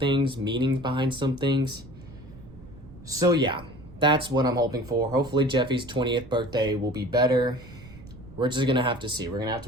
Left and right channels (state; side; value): noise; right; rumble, 18 dB below the sound